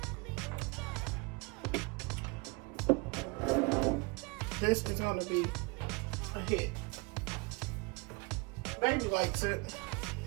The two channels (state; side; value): quieter; left; 28.4 dB